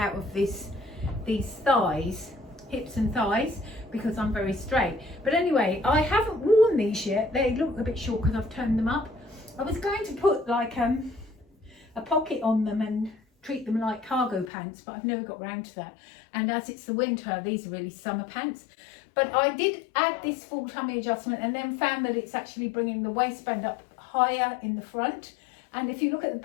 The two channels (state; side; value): drops out; right; at 14.5 s